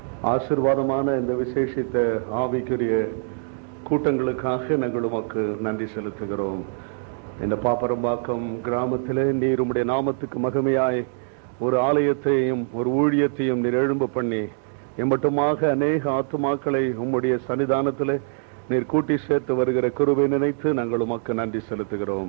ஆசீர்வாதமான இந்த விசேஷித்த ஆவிக்குரிய கூட்டங்களுக்காக நாங்கள் உமக்கு நன்றி செலுத்துகிறோம். இந்த பாப்பரம்பாக்கம் கிராமத்திலே நீர் உம்முடைய நாமத்துக்கு மகிமையாய் ஒரு ஆலயத்தையும் ஒரு ஊழியத்தையும் நீர் எழும்ப பண்ணி எம்மட்டுமாக அநேக ஆத்துமாக்களை உம்முடைய சன்னிதானத்திலே நீர் கூட்டி சேர்த்து வருகிற கிருபை நினைத்து நாங்கள் உமக்கு நன்றி செலுத்துகிறோம்.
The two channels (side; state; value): left; silent; digital silence